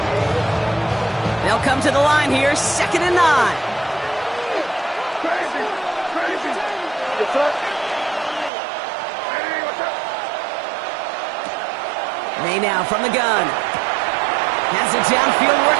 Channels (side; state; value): left; drops out; at 8.5 s